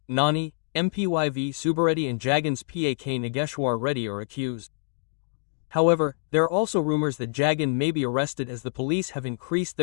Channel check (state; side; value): silent; right; digital silence